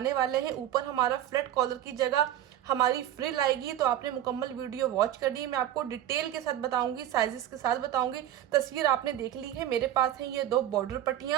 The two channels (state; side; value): quieter; left; 11.8 dB